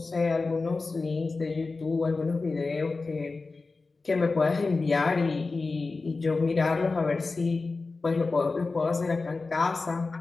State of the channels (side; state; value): right; quieter; 3.8 dB